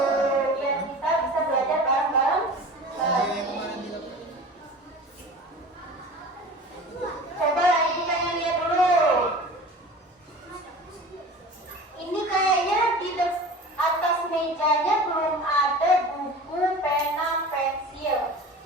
biar kita bisa belajar bareng-bareng lagi. Coba ibu pengen lihat dulu. Ini kayaknya di atas mejanya belum ada buku, pena, pensil.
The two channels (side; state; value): both; normal; correlation 0.37